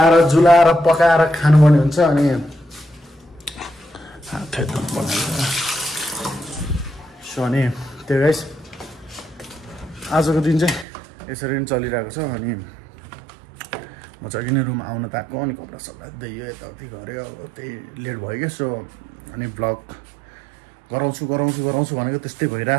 जुलाएर पकाएर खानुपर्ने हुन्छ। अनि सो अनि त्यो गाइस आजको दिन चाहिँ यसरी नै चलिरहेको छ। अनि म चाहिँ अघि नै रुम आउन त आएको, अनि कपडा सपडा दियो यताउति गऱ्यो, अब त्यही लेट भयो क्या। सो अनि भ्लग गराउँछु भनेको त्यस्तै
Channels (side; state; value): left; drops out; at 10.9 s